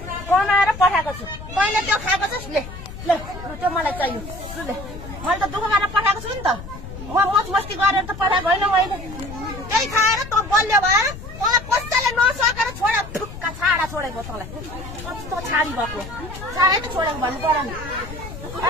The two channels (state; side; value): noise; left; rumble, 12 dB below the sound